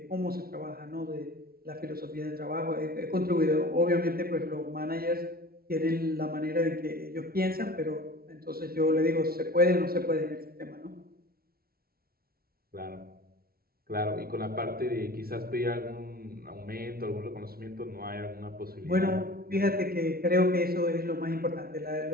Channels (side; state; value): left; late; 0.44 ms